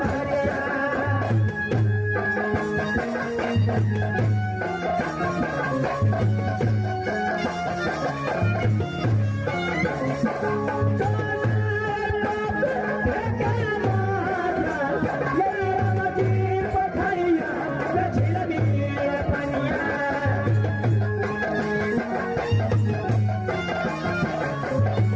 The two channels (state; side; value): identical; both; correlation 1.00